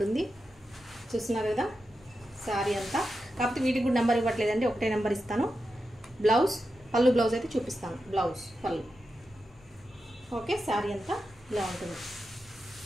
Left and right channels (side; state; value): both; normal; correlation 0.89